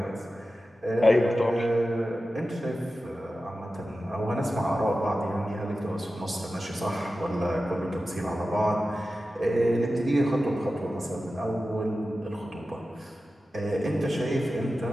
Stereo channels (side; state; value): both; normal; correlation 0.93